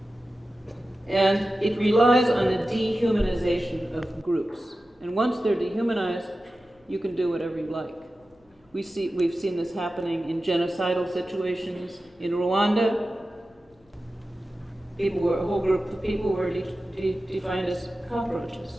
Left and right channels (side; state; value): both; normal; correlation 0.94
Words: And it relies on the dehumanization of groups. And once they're dehumanized, you can do whatever you like. We've seen this happening in genocidal situations. In Rwanda, a whole group of people were defined as